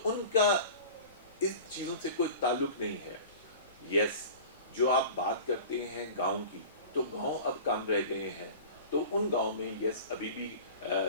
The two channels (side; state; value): both; inverted; correlation -0.38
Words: ان کا اس چیزوں سے کوئی تعلق نہیں ہے. یس جو آپ بات کرتے ہیں گاؤں کی, تو گاؤں اب کم رہ گئے ہیں. تو ان گاؤں میں یس ابھی بھی